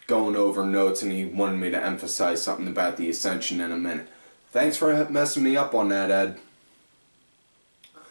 going over notes, and he wanted me to emphasize something about the Ascension in a minute. Thanks for messing me up on that, Ed.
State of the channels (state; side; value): inverted; both; correlation -1.00